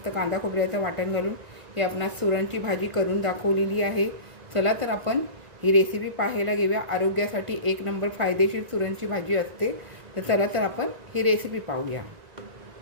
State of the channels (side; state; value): left; late; 1.9 ms